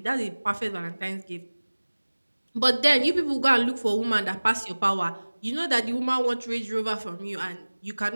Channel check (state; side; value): inverted; both; correlation -1.00